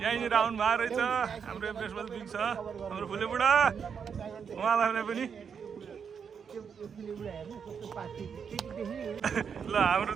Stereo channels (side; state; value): left; quieter; 6.8 dB